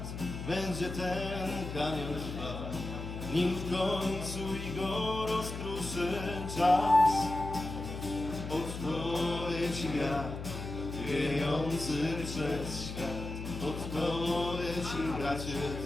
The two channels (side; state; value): left; noise; hum, 7 dB below the sound